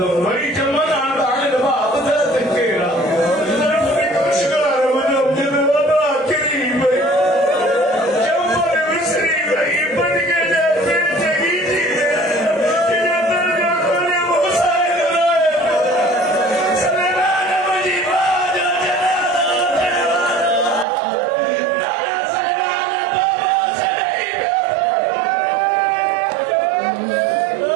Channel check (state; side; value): drops out; left; at 20.9 s